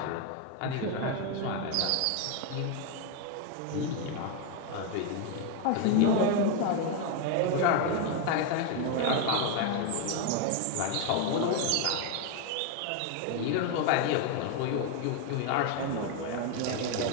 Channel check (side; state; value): both; different; correlation 0.01